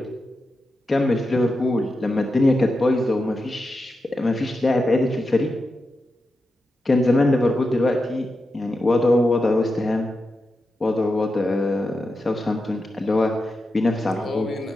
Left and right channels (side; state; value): both; normal; correlation 0.89